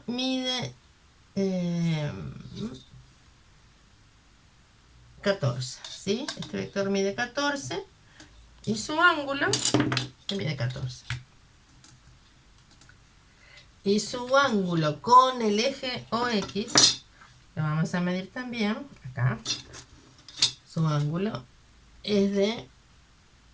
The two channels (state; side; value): identical; both; correlation 1.00